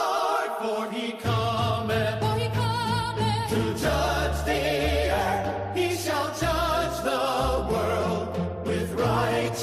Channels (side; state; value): both; identical; correlation 1.00